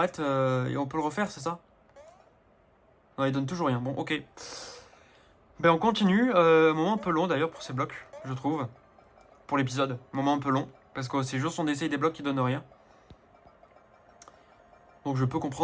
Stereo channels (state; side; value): identical; both; correlation 1.00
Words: et on peut le refaire, c'est ça? Non il donne toujours rien, bon ok. Ben on continue, moment un peu long d'ailleurs pour ces blocs, je trouve. Pour l'épisode, moment un peu long. Parce que c'est juste on essaye des blocs qui donnent rien. Donc je peux